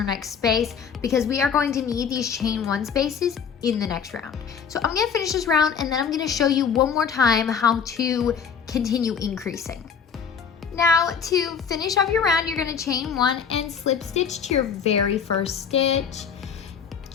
next space, because we are going to need these chain 1 spaces in the next round. So I'm gonna finish this round, and then I'm gonna show you one more time how to continue increasing. Now to finish off your round, you're gonna chain 1 and slip stitch to your very first stitch,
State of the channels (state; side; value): quieter; right; 6.9 dB